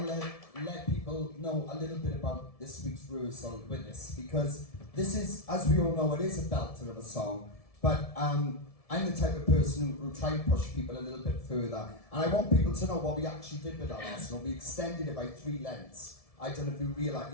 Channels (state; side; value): late; right; 1.7 ms